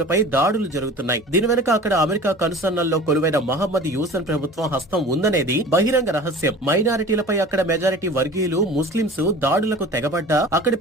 దాడులు జరుగుతున్నాయి. దీని వెనుక అక్కడ అమెరికా కనుసన్నల్లో కొలువైన మహమ్మద్ యూసన్ ప్రభుత్వం హస్తం ఉందనేది బహిరంగ రహస్యం. మైనారిటీలపై అక్కడ మెజారిటీ వర్గీయులు ముస్లింస్ దాడులకు తెగబడ్డా అక్కడి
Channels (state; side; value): normal; both; correlation 0.40